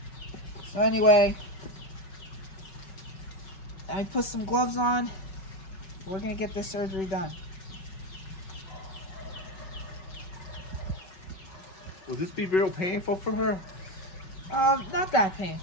So anyway, I put some gloves on. We're going to get this surgery done. Will this be real painful for her? Not that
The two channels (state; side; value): late; right; 5.4 ms